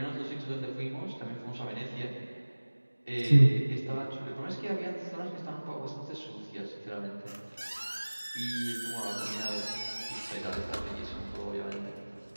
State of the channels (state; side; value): inverted; both; correlation -1.00